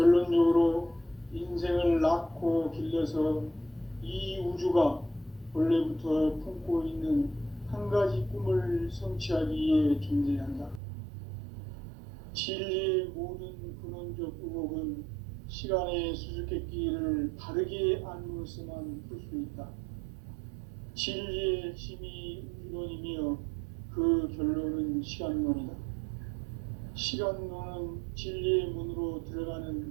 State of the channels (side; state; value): left; drops out; at 10.8 s